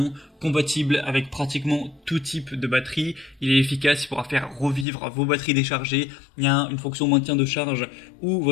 compatible avec pratiquement tout type de batterie. Il est efficace, il pourra faire revivre vos batteries déchargées. Il y a une fonction maintien de charge où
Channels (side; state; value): right; drops out; at 4.9 s